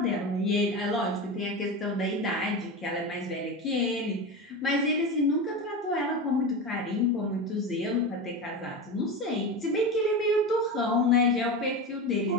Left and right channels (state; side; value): normal; both; correlation 0.23